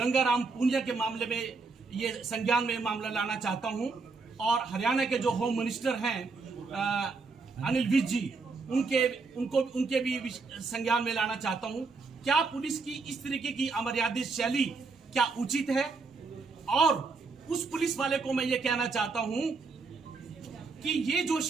पुनिया के मामले में ये संज्ञान में मामला लाना चाहता हूं और हरियाणा के जो होम मिनिस्टर हैं अनिल विज जी, उनके भी संज्ञान में लाना चाहता हूं। क्या पुलिस की इस तरीके की अमर्यादित शैली क्या उचित है? और उस पुलिस वाले को मैं ये कहना चाहता हूं कि ये जो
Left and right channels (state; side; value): quieter; left; 4.2 dB